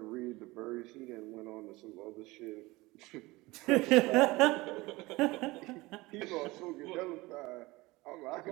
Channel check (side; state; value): left; quieter; 21.2 dB